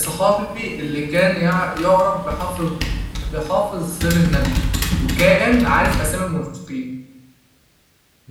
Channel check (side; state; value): both; identical; correlation 1.00